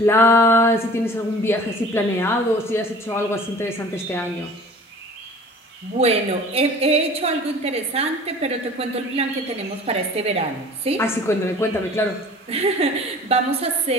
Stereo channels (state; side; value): normal; both; correlation 0.45